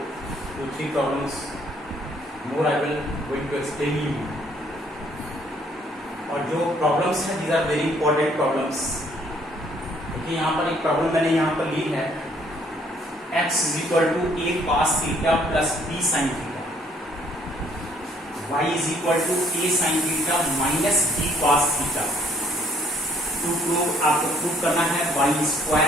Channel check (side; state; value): both; normal; correlation 0.64